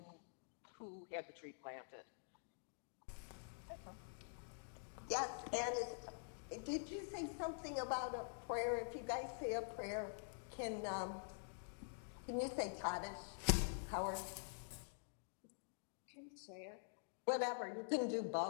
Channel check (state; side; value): silent; right; digital silence